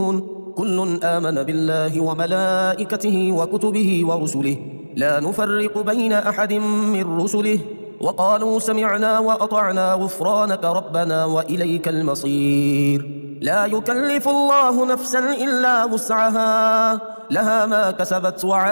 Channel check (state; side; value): inverted; both; correlation -1.00